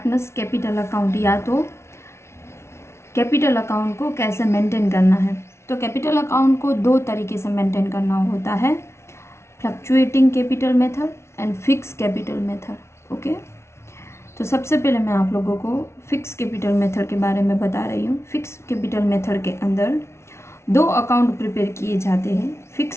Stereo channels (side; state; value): right; late; 0.13 ms